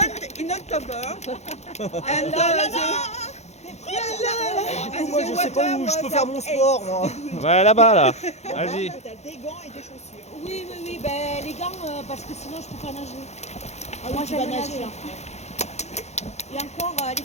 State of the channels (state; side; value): late; right; 0.32 ms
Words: in October. And Moi je sais pas où je peux faire mon sport moi. Ouais, là-bas, là. Vas-y. T'as des gants et des chaussures. Oui, ben, les gants, parce que sinon je peux pas nager. Moi tu vas j'aime nager, nager. hein. Et encore, elle est